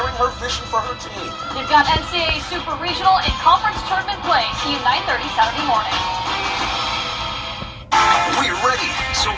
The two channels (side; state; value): both; identical; correlation 1.00